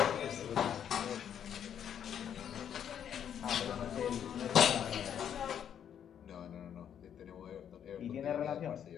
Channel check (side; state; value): right; quieter; 9.1 dB